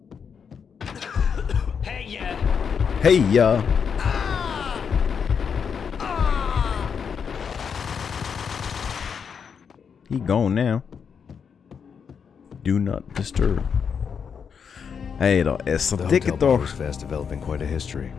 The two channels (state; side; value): quieter; right; 6.7 dB